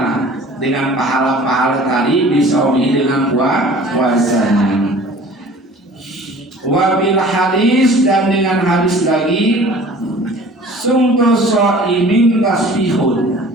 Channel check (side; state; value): both; normal; correlation 0.47